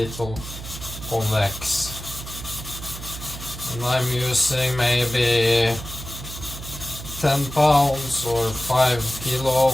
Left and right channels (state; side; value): noise; right; hum, 11 dB below the sound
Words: convex. And I'm using maybe 10 pounds or 5